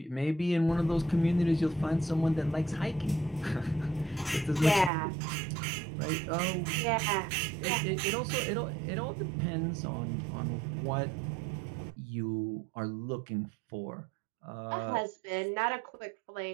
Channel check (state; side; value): drops out; left; at 4.9 s